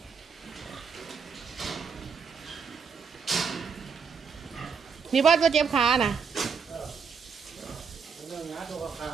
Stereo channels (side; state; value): left; quieter; 5.9 dB